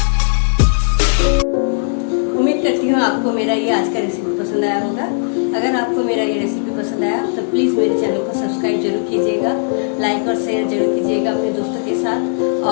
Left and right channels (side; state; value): right; silent; digital silence